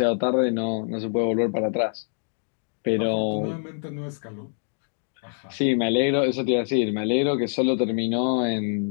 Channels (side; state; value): right; silent; digital silence